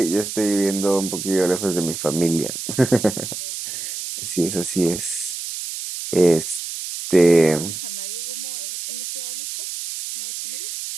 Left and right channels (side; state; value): right; noise; hiss, 6 dB below the sound